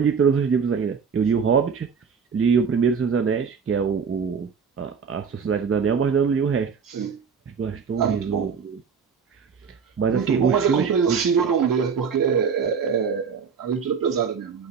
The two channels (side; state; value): left; quieter; 6.1 dB